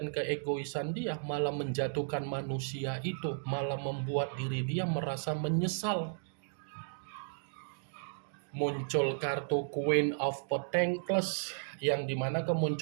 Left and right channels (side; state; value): left; silent; digital silence